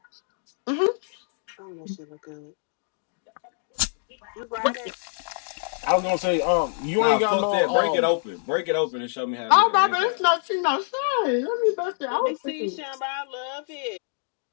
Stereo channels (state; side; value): silent; right; 61 dB below the other